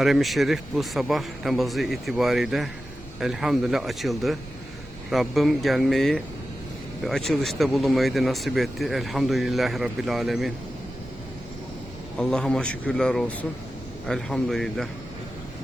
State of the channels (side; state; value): both; normal; correlation 0.93